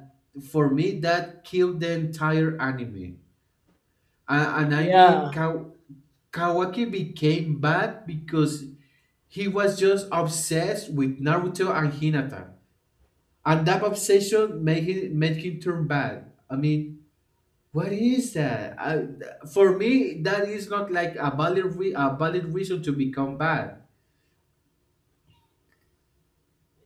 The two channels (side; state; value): both; identical; correlation 1.00